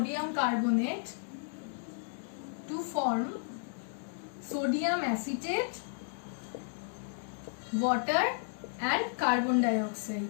carbonate to form sodium acetate, water and carbon dioxide.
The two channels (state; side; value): silent; right; digital silence